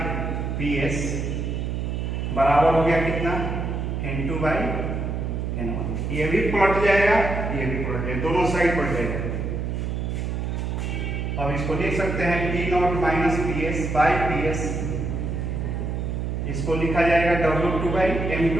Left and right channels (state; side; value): noise; right; hum, 2 dB below the sound